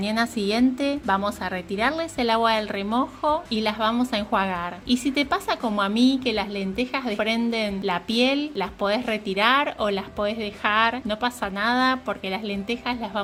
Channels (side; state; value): both; identical; correlation 1.00